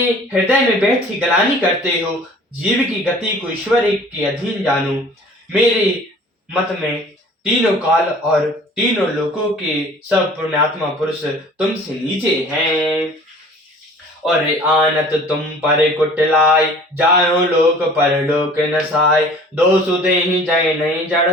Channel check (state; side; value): normal; both; correlation 0.48